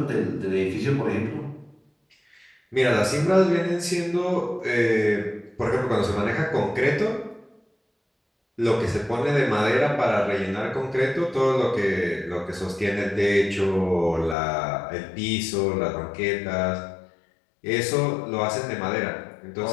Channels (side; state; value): right; drops out; at 14.4 s